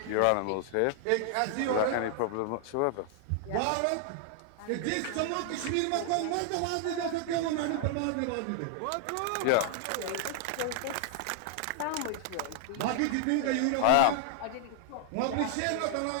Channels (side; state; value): both; different; correlation 0.00